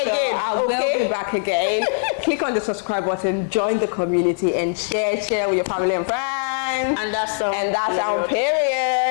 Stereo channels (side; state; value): right; silent; digital silence